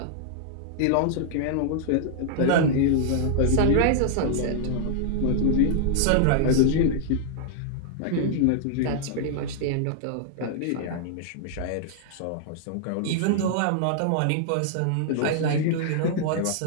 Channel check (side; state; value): both; different; correlation -0.01